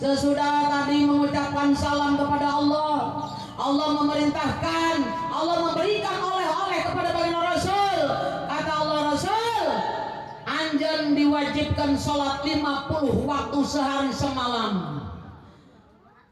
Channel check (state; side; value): identical; both; correlation 1.00